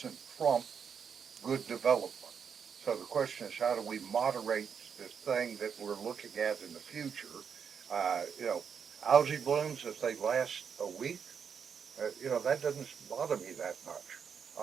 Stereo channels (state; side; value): quieter; left; 6.9 dB